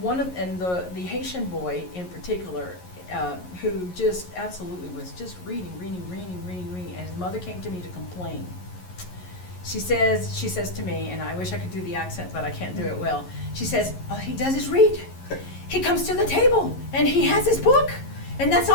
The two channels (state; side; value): late; right; 11 ms